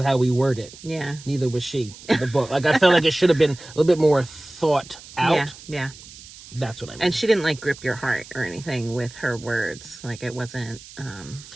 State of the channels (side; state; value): right; noise; hiss, 18 dB below the sound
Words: how we word it. Yeah. Neither was she in the book. Like, I felt like it should have been a little bit more thought out. Yeah. That's what I mean. And she didn't, like, grip your heart or anything with her words. Like, it wasn't